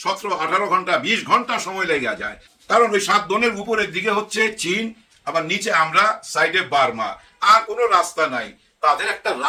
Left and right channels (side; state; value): both; identical; correlation 1.00